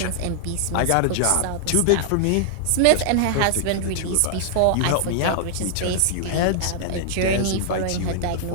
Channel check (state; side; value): different; both; correlation -0.01